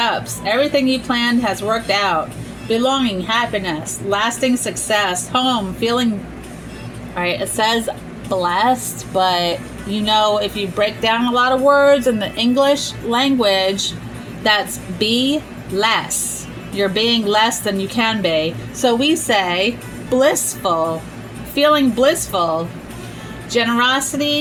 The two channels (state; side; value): identical; both; correlation 1.00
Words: Everything you planned has worked out. Belonging, happiness, lasting success, home, feeling... Alright, it says blessed, but you know, if you break down a lot of words in the English language, that's be less. You're being less than you can be. So we say blissful, feeling blissful.